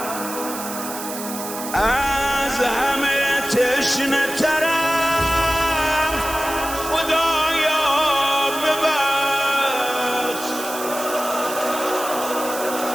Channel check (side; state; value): right; noise; hiss, 9 dB below the sound